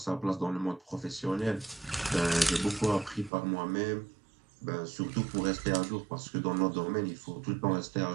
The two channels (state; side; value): drops out; left; at 3.3 s